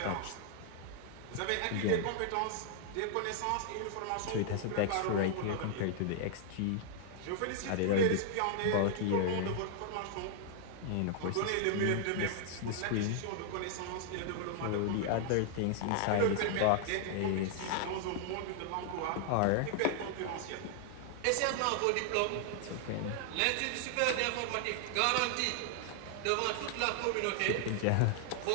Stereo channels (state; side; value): different; both; correlation 0.00